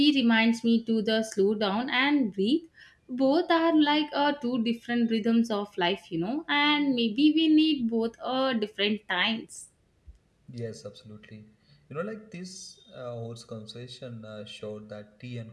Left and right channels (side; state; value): both; identical; correlation 1.00